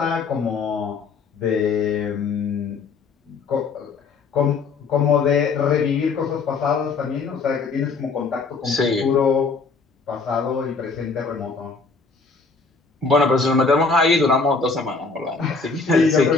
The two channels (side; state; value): right; quieter; 4.5 dB